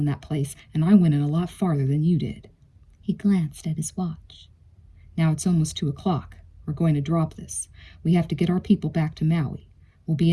that place, and I went in a lot farther than you did. He glanced at his watch. Now it's almost 2 o'clock. We're going to drop this. We have to get our people back to Maui. We'll be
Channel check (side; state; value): both; identical; correlation 1.00